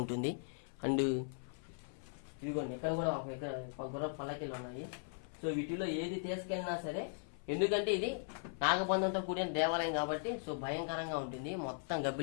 అండ్ ఇదిగోండి ఇక్కడ కూడా ఒక గుర్రం పల్లకిలు ఉన్నాయి. సో వీటిలో ఏది తీసుకెళ్ళినా సరే, ఎందుకంటే ఇది నాగబంధంతో కూడిన దేవాలయం కాబట్టి సో భయంకరంగా ఉంటుంది. మొత్తం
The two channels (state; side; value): silent; right; 52 dB below the other